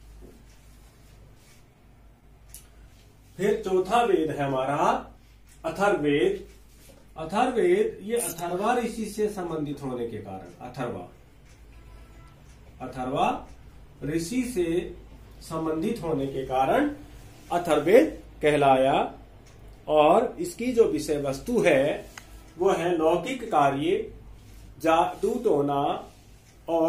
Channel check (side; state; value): both; identical; correlation 1.00